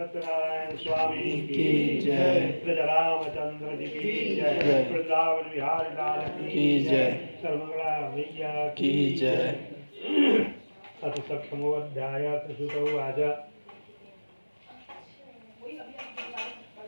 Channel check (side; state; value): both; inverted; correlation -1.00